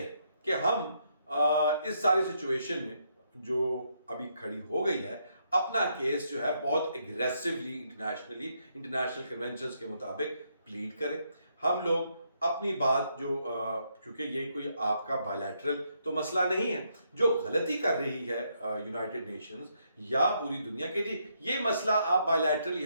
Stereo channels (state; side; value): inverted; both; correlation -0.76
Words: کہ ہم اس ساری سچویشن میں جو ابھی کھڑی ہو گئی ہے اپنا کیس جو ہے بہت اگریسولی انٹرنیشنل کنونشنز کے مطابق پلیڈ کریں۔ ہم لوگ اپنی بات جو کیونکہ یہ کوئی آپ کا بائیلیٹرل تو مسئلہ نہیں ہے، جو غلطی کر رہی ہے یونائٹڈ نیشنز یا پوری دنیا کے، جی یہ مسئلہ آپ بائیلیٹرلی